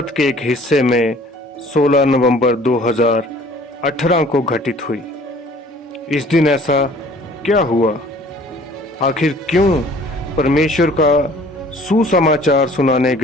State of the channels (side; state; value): both; normal; correlation 0.52